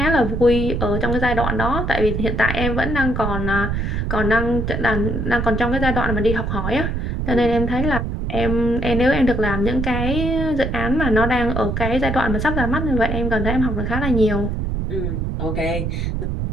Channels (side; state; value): right; noise; rumble, 2 dB below the sound